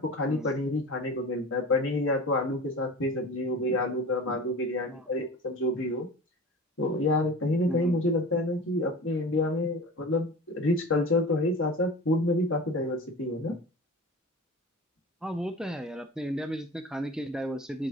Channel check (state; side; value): normal; both; correlation 0.35